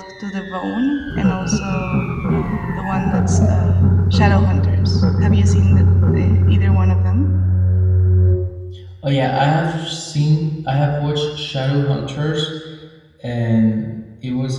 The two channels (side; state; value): both; identical; correlation 1.00